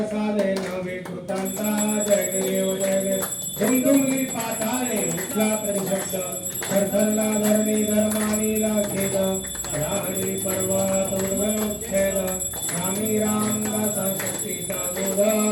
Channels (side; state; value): both; identical; correlation 1.00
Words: नवे कृतांता जय देव जय देव झुमझुमली पाताळे उठला परिशब्द थरथरला धरणी धर्मानीला खेद राणी पर्वत उद्भवच्छेद स्वामी रामदासा शक्तीचा बोध